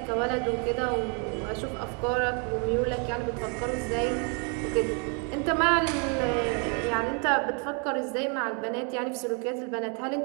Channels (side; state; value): left; quieter; 36.9 dB